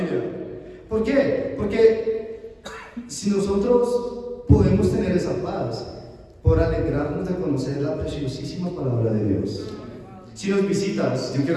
¿Por qué? Porque si nosotros podemos tener esa paz por alegrarnos de conocer la preciosísima palabra de Dios. Si nos visitas, yo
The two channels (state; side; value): identical; both; correlation 1.00